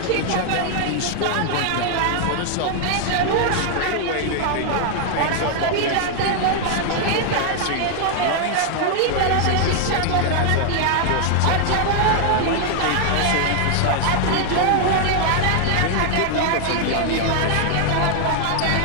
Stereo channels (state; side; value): different; both; correlation 0.00